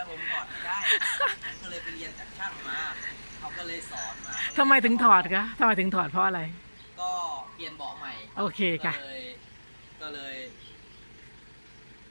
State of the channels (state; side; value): inverted; both; correlation -1.00